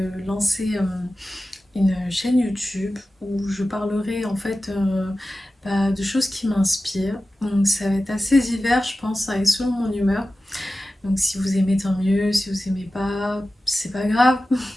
lancer une chaîne YouTube où je parlerai en fait de choses qui m'inspirent. Donc ça va être assez divers je pense, et selon mon humeur. Donc si vous aimez tant mieux, si vous aimez pas, c'est pas grave.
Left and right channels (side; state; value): both; normal; correlation 0.95